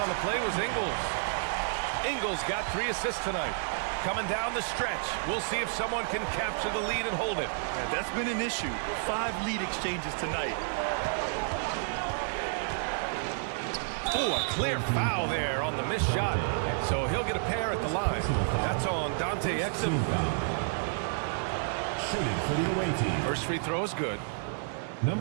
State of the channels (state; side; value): silent; left; 58 dB below the other